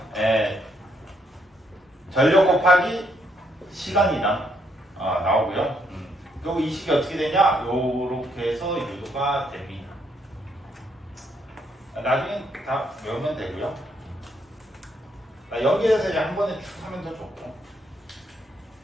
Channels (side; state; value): both; normal; correlation 0.73